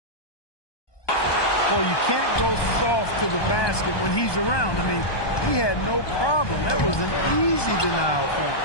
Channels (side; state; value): right; late; 1.2 ms